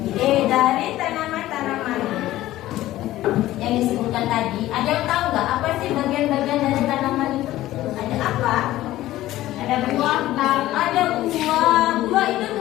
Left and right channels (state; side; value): quieter; right; 15.3 dB